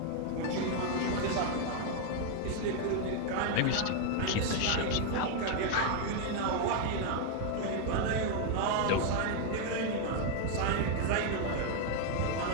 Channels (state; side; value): different; both; correlation 0.00